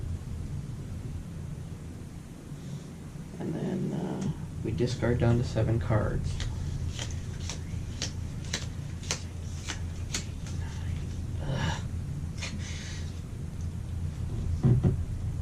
And then we discard down to 7 cards.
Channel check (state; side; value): identical; both; correlation 1.00